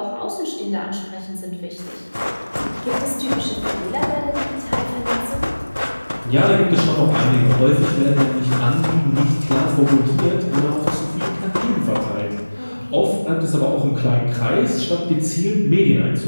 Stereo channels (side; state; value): both; inverted; correlation -1.00